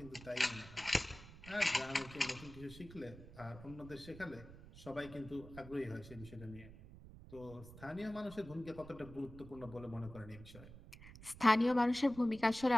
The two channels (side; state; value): right; noise; rumble, 16 dB below the sound